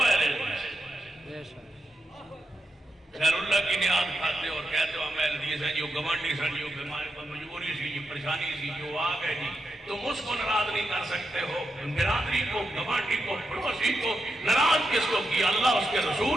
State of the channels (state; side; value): normal; both; correlation 0.86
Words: اہل حدیث ہے. غیر اللہ کی نیاد کھاتے اور کہتے ہو ہم اہل حدیث ہیں. جو گوانڈی سن, جو بیماری پر مجبوری سی, جو پریشانی سی, جو آ گئے جی, تم اس کو ناراض نہیں کر سکتے ہو. برادری کو, گوانڈی کو, پڑوسی کو ناراض کس کو کیا؟ اللہ اس کے